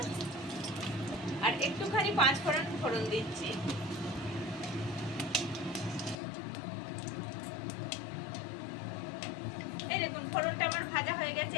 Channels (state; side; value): drops out; right; at 6.2 s